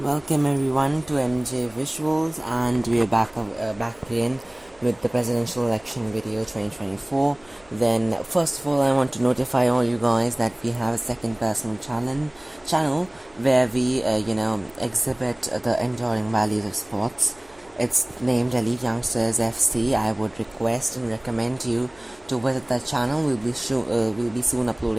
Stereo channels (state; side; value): noise; right; hum, 30 dB below the sound